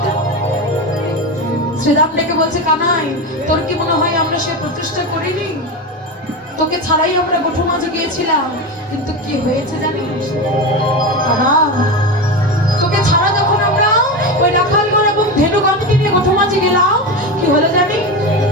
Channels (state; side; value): normal; both; correlation 0.20